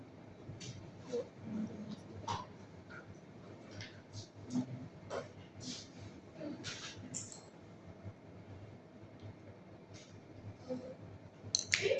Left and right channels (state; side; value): identical; both; correlation 1.00